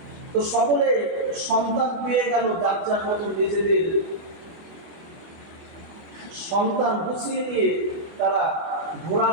তো সকলে সন্তান পেয়ে গেল, যার যার মতো নিজেদের সন্তান গুছিয়ে দিয়ে তারা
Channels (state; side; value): late; left; 24 ms